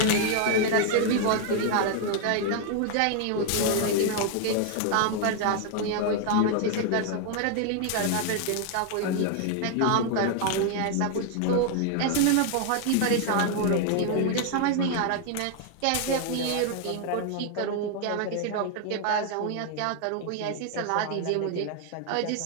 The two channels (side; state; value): both; different; correlation 0.00